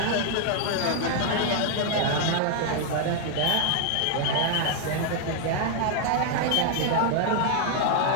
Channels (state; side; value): different; both; correlation 0.00